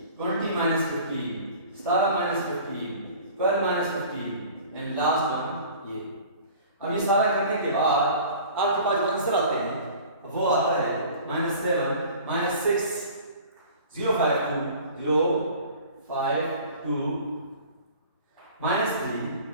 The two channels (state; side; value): inverted; both; correlation -0.44